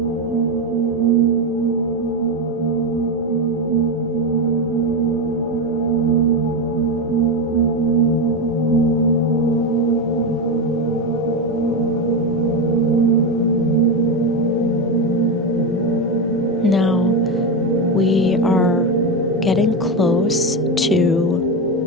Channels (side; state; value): both; normal; correlation 0.12